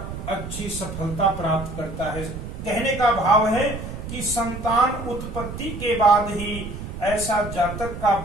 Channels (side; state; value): right; noise; rumble, 8 dB below the sound